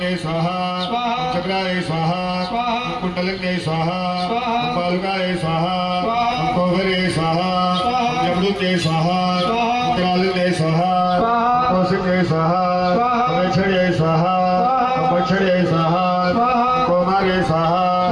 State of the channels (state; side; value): identical; both; correlation 1.00